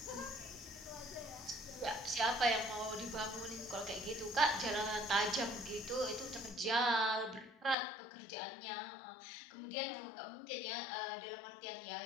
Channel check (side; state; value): right; drops out; at 7.8 s